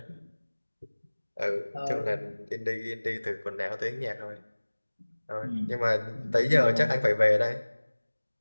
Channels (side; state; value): both; inverted; correlation -1.00